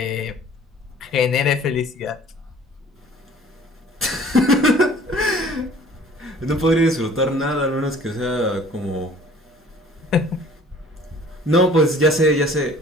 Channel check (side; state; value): both; normal; correlation 0.51